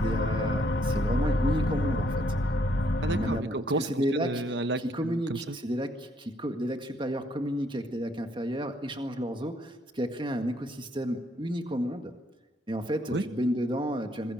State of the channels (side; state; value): both; normal; correlation 0.69